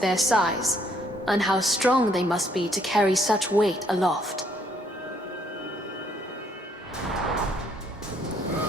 their size, and how strong they must be to carry such weight aloft.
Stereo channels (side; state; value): both; normal; correlation 0.68